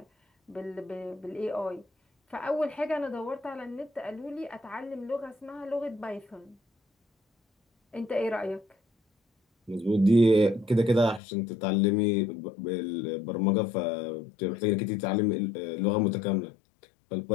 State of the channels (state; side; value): drops out; right; at 11.2 s